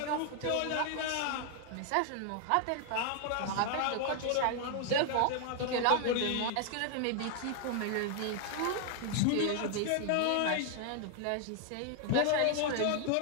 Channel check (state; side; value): different; both; correlation 0.00